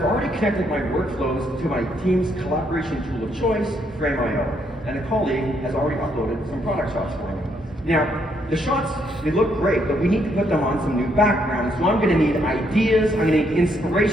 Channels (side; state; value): both; normal; correlation 0.73